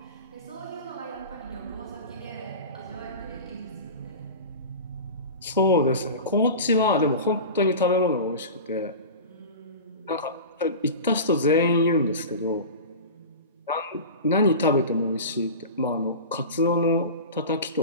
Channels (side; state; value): both; inverted; correlation -0.31